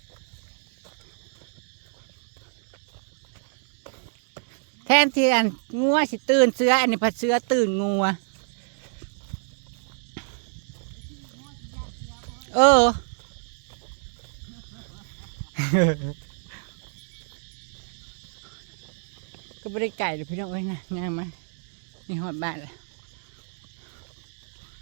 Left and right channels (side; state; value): left; silent; digital silence